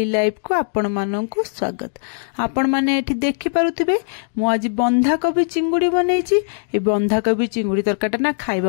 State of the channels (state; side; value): silent; right; digital silence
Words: लाइफ को आपण माननकु स्वागत। आपण माने एठी देखि पारुथिबे मु आज बंधाकोबी चिंगुड़ी बनैछि। ए बंधाकोबी चिंगुड़ी तरकाटा ना